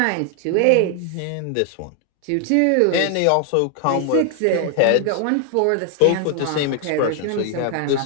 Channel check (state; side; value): different; both; correlation 0.00